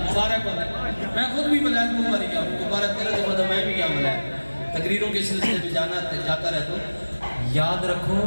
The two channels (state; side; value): inverted; both; correlation -1.00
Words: مبارک ہوتا ہے میں خود بھی ملائد مبارک گیا مبارک تیرے تو میں بھی گیا ملائد تقریروں کے سلسلے میں جاتا رہتا ہوں یاد